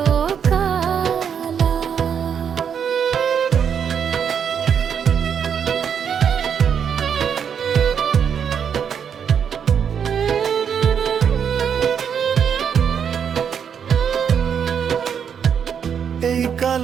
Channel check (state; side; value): quieter; left; 7.6 dB